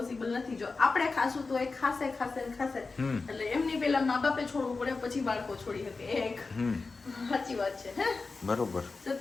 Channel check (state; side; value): quieter; right; 4.0 dB